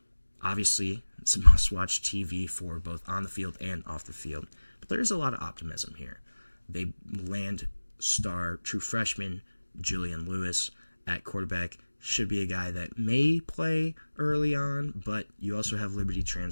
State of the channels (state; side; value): inverted; both; correlation -1.00